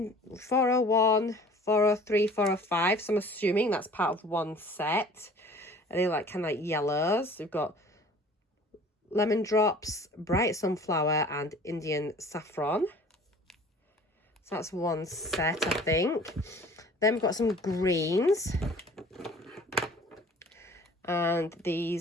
401, 403, 405. So I'm assuming that's part of one set. And they're like kind of like yellows. We've got lemon drops, bright sunflower, and Indian saffron. So that's one set, I think. Then we've got some greens. And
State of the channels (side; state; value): both; normal; correlation 0.48